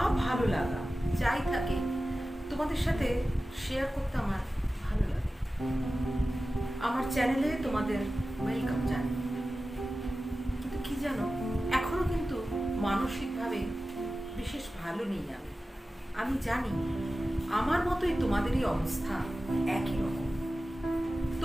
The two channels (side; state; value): both; normal; correlation 0.95